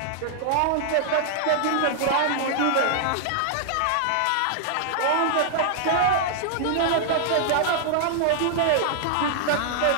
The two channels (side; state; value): both; different; correlation -0.01